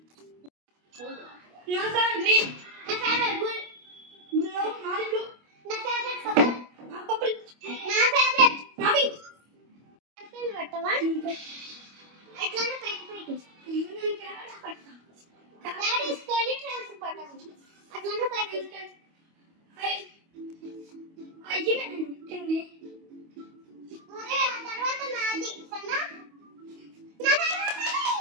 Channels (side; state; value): left; late; 25 ms